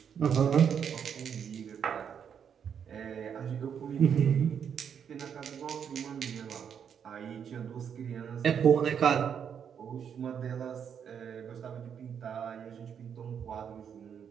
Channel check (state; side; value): quieter; left; 7.8 dB